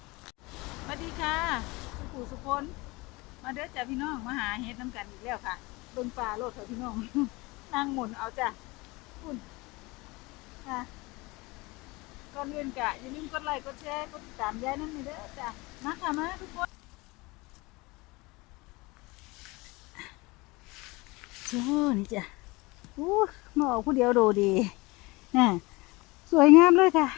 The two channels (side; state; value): right; quieter; 23.8 dB